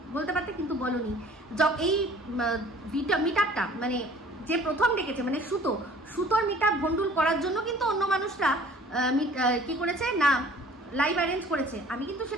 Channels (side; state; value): both; normal; correlation 0.51